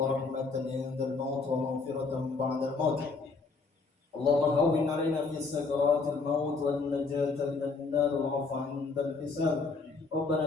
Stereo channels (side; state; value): right; quieter; 4.2 dB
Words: عند الموت ومغفرة بعد الموت. اللهم هون علينا في سكرات الموت والنجاة من النار والعفو عند الحساب. ربنا